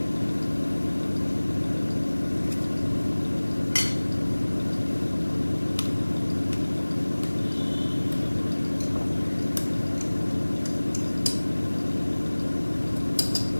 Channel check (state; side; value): inverted; both; correlation -1.00